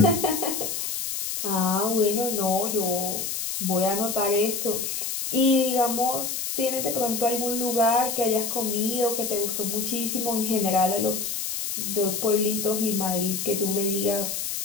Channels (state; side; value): noise; left; hiss, 3 dB below the sound